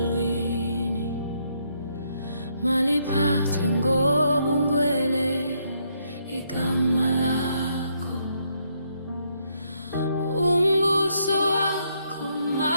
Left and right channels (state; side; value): inverted; both; correlation -0.74